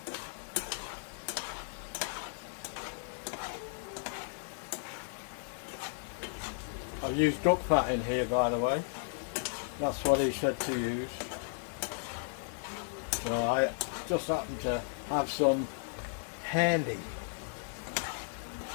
I've used duck fat in here, by the way. That's what he said to use. So I just happen to have some handy.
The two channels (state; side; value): silent; right; 55 dB below the other